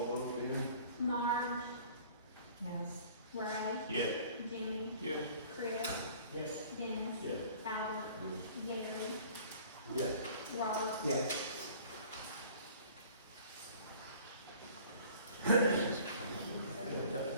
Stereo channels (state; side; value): inverted; both; correlation -0.49